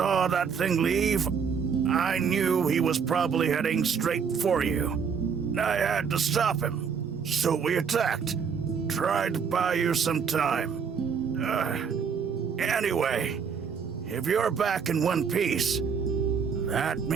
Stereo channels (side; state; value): left; quieter; 6.4 dB